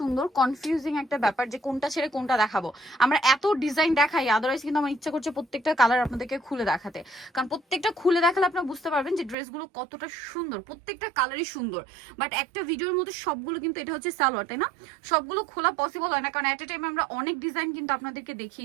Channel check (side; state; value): left; drops out; at 9.3 s